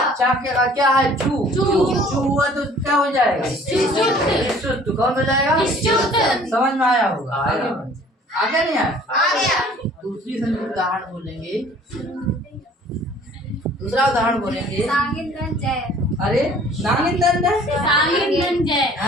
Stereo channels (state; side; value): normal; both; correlation 0.52